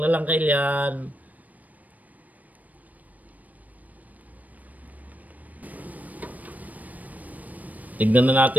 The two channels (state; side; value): late; left; 0.075 ms